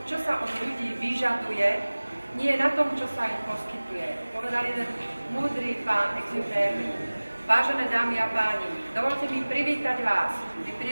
čo sa od ľudí vyžaduje, nie na tom, čo sa im poskytuje. Povedal jeden múdry pán Exupéry. Vážené dámy a páni, dovolte mi privítať vás pri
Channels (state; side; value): inverted; both; correlation -1.00